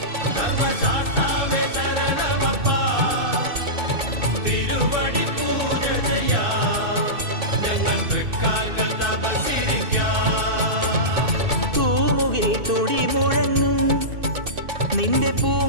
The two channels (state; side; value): late; left; 2.6 ms